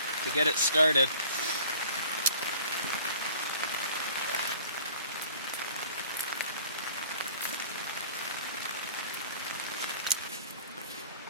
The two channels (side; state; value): both; inverted; correlation -0.48